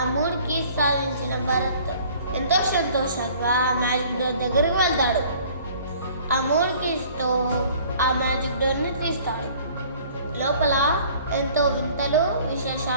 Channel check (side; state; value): both; inverted; correlation -0.52